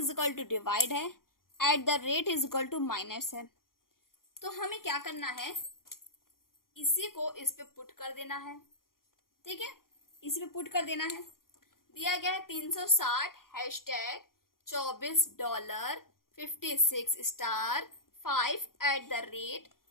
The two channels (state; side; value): late; right; 0.91 ms